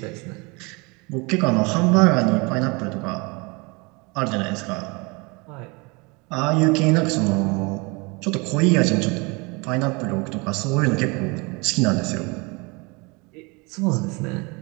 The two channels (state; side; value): quieter; left; 28.0 dB